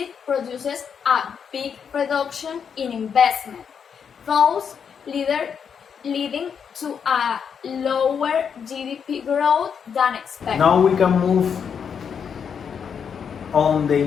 produces a big reduction in investment, thus leading to a lower GDP growth than expected. Now we can move on the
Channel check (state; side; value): quieter; right; 7.1 dB